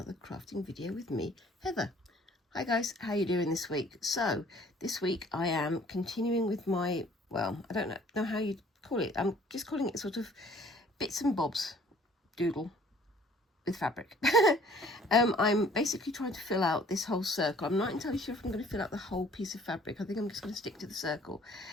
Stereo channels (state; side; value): normal; both; correlation 0.55